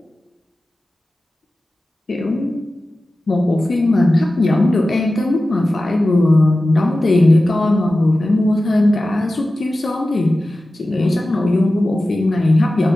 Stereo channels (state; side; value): normal; both; correlation 0.95